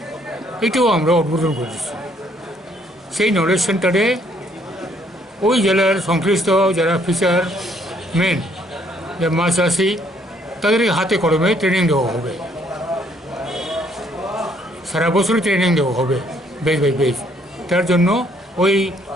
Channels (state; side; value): normal; both; correlation 0.66